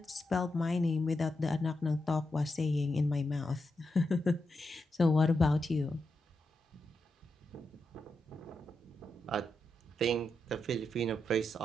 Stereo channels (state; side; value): normal; both; correlation 0.86